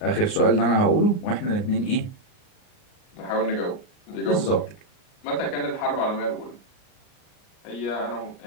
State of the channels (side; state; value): right; late; 38 ms